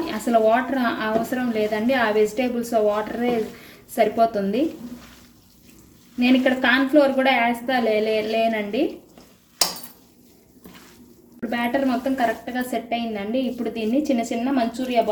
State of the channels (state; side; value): identical; both; correlation 1.00